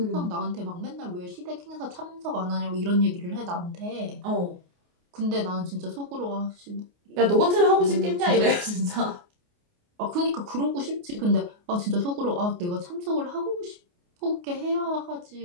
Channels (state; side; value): late; left; 28 ms